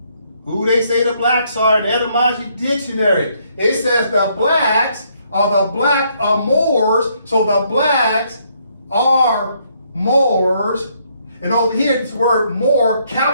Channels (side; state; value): both; inverted; correlation -0.71